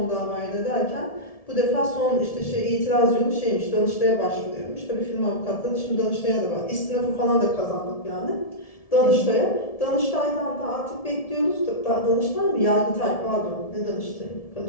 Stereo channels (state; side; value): late; right; 1.7 ms